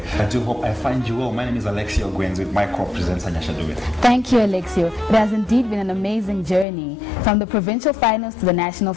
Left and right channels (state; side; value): drops out; right; at 6.7 s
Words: I do hope I find you well. My name is Alexio Gwens with my co-presenter Nyashaduwe. Thank you, Alexio. It has indeed been an amazing journey from the provincial finals to the national